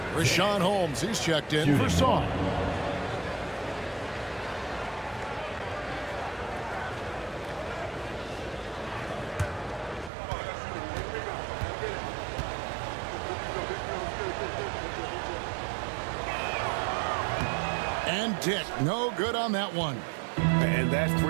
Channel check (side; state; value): left; drops out; at 10.1 s